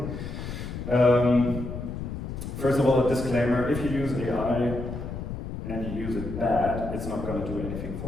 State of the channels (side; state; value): left; noise; rumble, 7 dB below the sound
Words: First of all, a disclaimer: if you use AI and you use it bad, it's not going to do anything